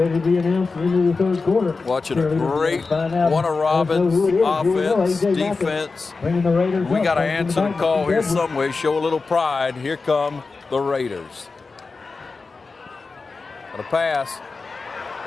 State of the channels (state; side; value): quieter; right; 4.2 dB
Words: to be announced into the third quarter. Watching a great Warner Robbins offense, defense. We got to answer the call here some way, show a little pride. Here come the Raiders. Got a pass